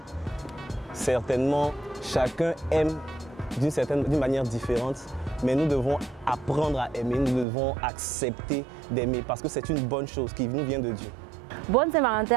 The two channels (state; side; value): drops out; left; at 7.5 s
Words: Certainement, chacun aime d'une manière différente, mais nous devons apprendre à aimer, nous devons accepter d'aimer parce que c'est une bonne chose qui nous vient de Dieu. Bonne